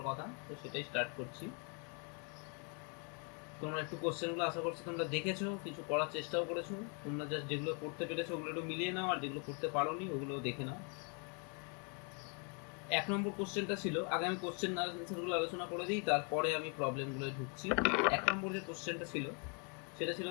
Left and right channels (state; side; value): quieter; right; 37.4 dB